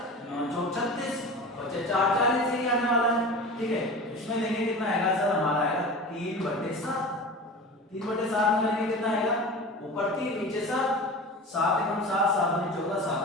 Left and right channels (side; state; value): both; normal; correlation 0.33